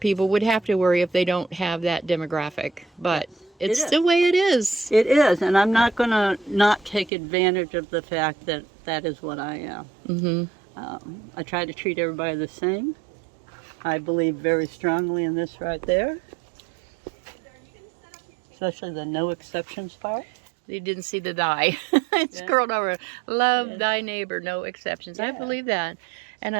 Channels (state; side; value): drops out; left; at 7.1 s